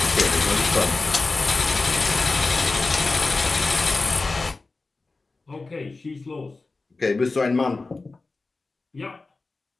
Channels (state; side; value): quieter; right; 3.6 dB